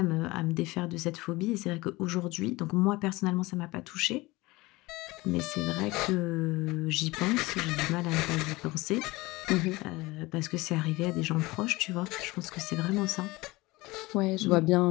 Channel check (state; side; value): quieter; right; 21.4 dB